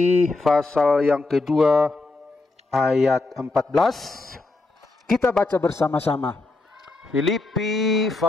pasal yang kedua ayat 14. Kita baca bersama-sama. Filipi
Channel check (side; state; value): right; quieter; 3.3 dB